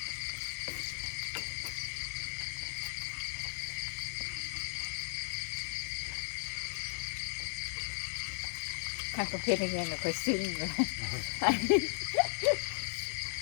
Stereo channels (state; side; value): silent; right; digital silence